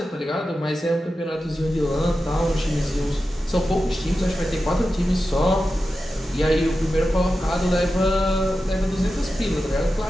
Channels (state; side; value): normal; both; correlation 0.92